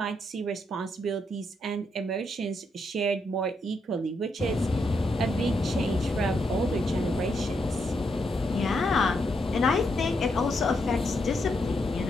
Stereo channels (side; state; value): both; normal; correlation 0.79